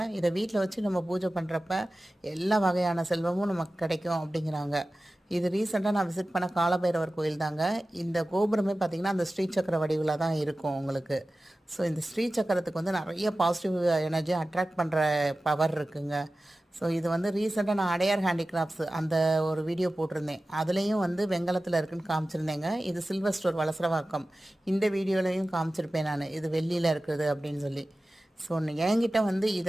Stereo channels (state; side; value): normal; both; correlation 0.96